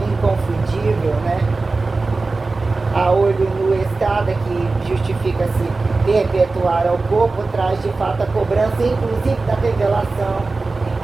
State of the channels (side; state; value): left; quieter; 3.7 dB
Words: inconfundível, né, a olho nu estada, que justifica-se perpetuar ao corpo, traz de fato a cobrança, inclusive da revelação,